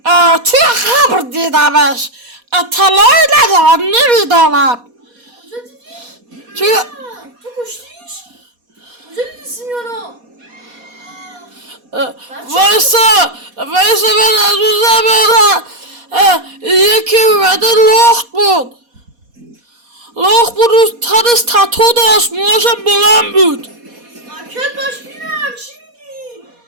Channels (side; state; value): left; late; 4.2 ms